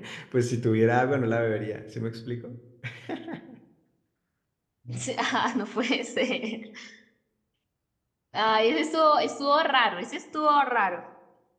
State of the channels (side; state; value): both; identical; correlation 1.00